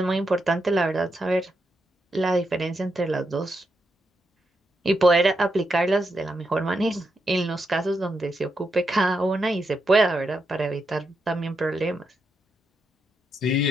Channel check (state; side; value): normal; both; correlation 0.83